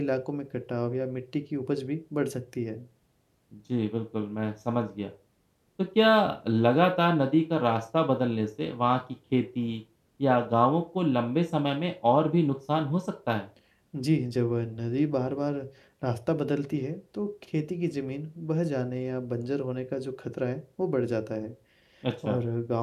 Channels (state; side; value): identical; both; correlation 1.00